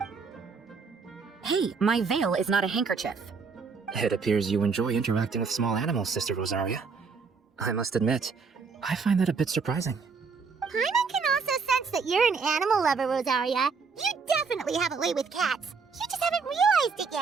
Hey, my veil is not a handkerchief. It appears you enjoy interacting with small animals, Sister Rosaria. I must admit, I find that a bit surprising. Paimon can also sense that you're an animal lover, Rosaria. You definitely have a way with cats. You just haven't realized it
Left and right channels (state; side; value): quieter; left; 5.1 dB